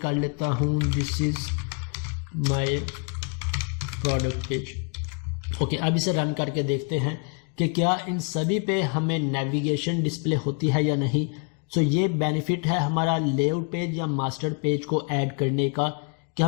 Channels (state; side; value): quieter; right; 36.5 dB